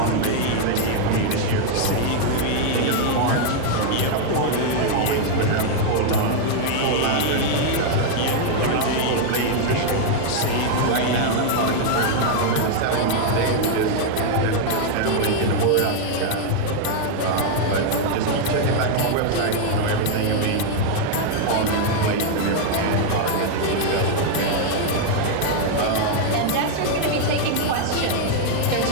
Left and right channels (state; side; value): different; both; correlation 0.00